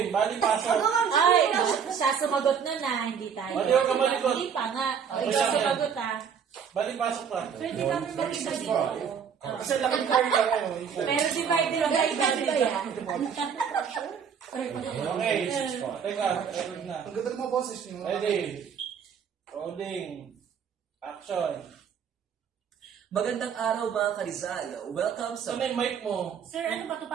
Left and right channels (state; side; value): quieter; left; 7.2 dB